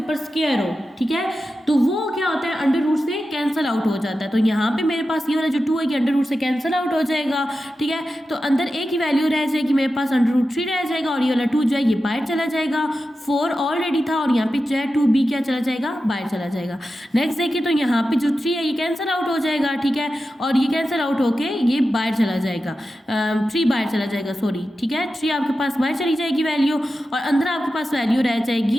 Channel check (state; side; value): normal; both; correlation 0.92